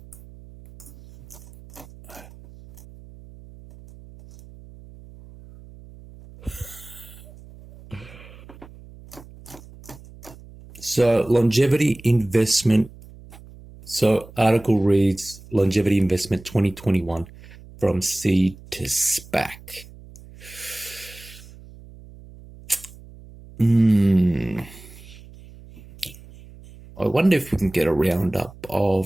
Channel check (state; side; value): noise; right; hum, 20 dB below the sound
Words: So longevity investment. So article reads longevity investment 2021 from seed to SPAC. I wonder if we can get a roundup